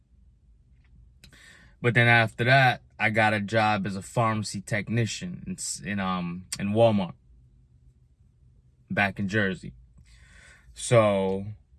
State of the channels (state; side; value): identical; both; correlation 1.00